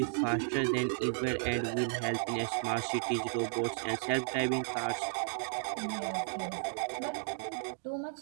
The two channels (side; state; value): left; silent; digital silence